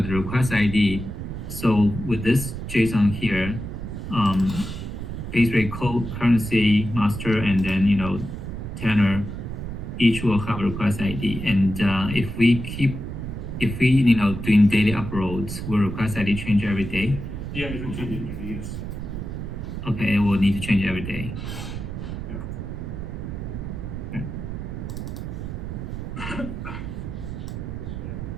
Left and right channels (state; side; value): noise; right; rumble, 6 dB below the sound